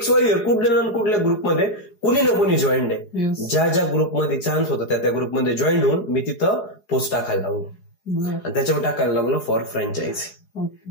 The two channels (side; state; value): right; late; 4.8 ms